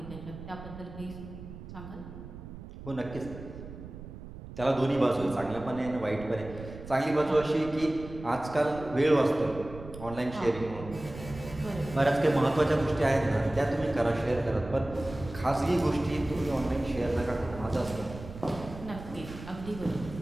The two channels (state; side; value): noise; right; rumble, 13 dB below the sound